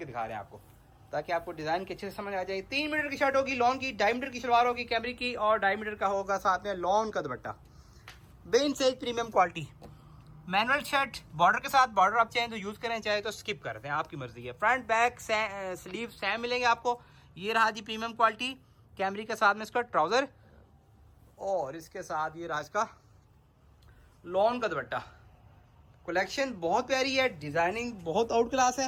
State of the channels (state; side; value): identical; both; correlation 1.00